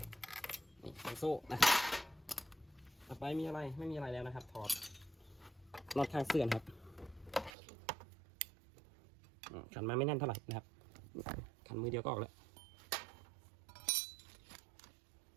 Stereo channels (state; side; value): drops out; left; at 7.5 s